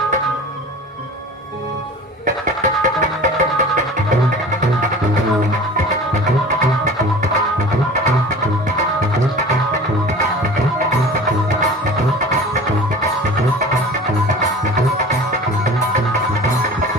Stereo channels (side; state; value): both; normal; correlation 0.40